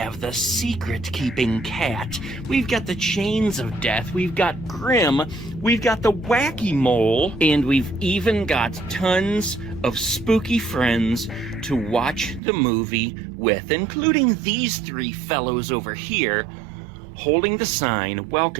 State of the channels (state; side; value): drops out; left; at 12.4 s